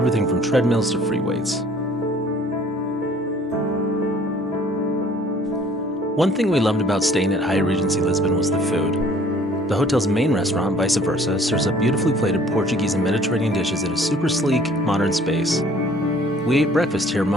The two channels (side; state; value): both; normal; correlation 0.54